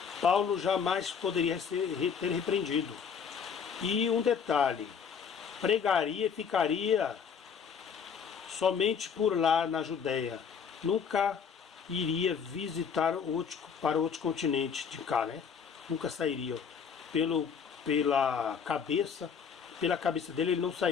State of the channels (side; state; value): right; quieter; 6.8 dB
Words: Paulo jamais poderia ter repreendido. E um detalhe, pregaria e ficaria somente por lá na Judéia, nunca iria visitar para outro continente de cá, né? Nunca sairia. Pela cabeça dele, ele não